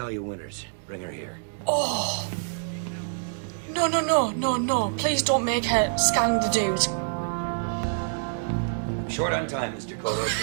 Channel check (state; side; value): silent; left; digital silence